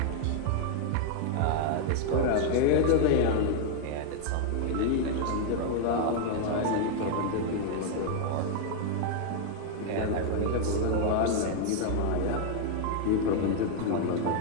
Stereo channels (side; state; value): both; different; correlation 0.00